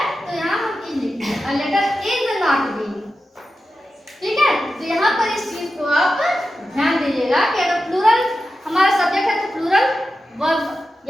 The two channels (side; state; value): both; normal; correlation 0.91